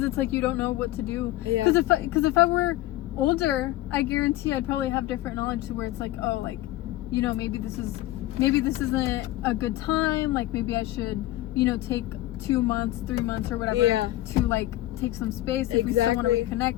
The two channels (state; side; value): quieter; right; 16.2 dB